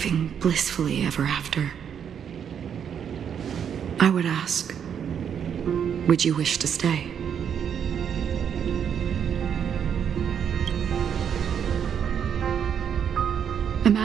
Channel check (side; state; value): left; quieter; 8.1 dB